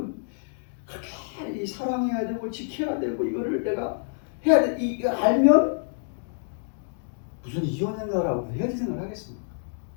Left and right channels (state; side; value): silent; right; digital silence